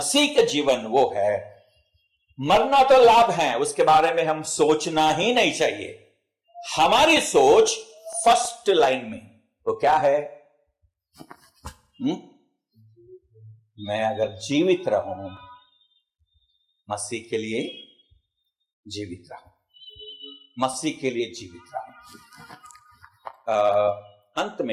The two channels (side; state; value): both; identical; correlation 1.00